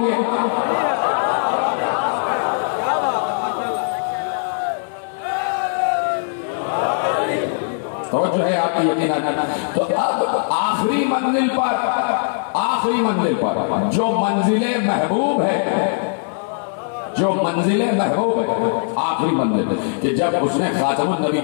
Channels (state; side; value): silent; right; 60 dB below the other